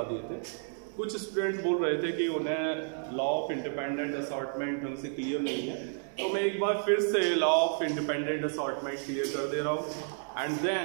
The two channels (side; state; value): left; silent; 57 dB below the other